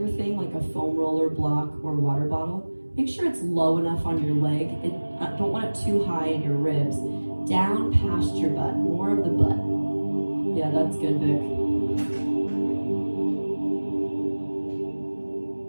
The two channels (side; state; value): both; inverted; correlation -1.00